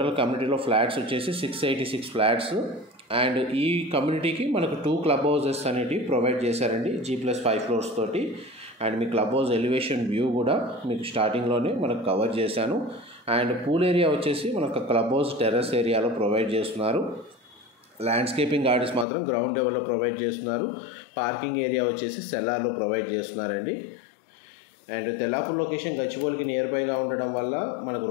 కమ్యూనిటీలో ఫ్లాట్స్ వచ్చేసి 686 ఫ్లాట్స్. అండ్ ఈ కమ్యూనిటీకి మనకు 2 క్లబ్ హౌసెస్ అనేవి ప్రొవైడ్ చేశారండి G+5 ఫ్లోర్స్ తోటి. And me club house elevation view కూడా మీకు స్టార్టింగ్లోనే మనకు కవర్ చేశాను. అండ్ పూల్ ఏరియా వచ్చేసి మనకు క్లబ్ హౌస్ టెర్రస్ ఏరియాలో ప్రొవైడ్ చేస్తున్నారు. ల్యాండ్స్కేపింగ్ గార్డెన్స్ మాత్రం గ్రౌండ్ లెవెల్లో ప్రొవైడ్ చేస్తున్నారు. పార్కింగ్ ఏరియా వచ్చేసి సెల్లార్లో ప్రొవైడ్ చేస్తున్నారండి. అండ్ తెల్లాపూర్ లొకేషన్ గచ్చిబౌలికి నియర్ బైగా ఉండడం వల్ల మనకు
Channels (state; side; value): drops out; right; at 19.1 s